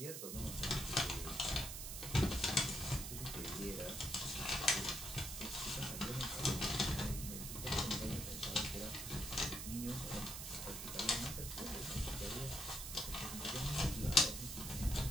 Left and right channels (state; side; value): noise; right; hiss, 6 dB below the sound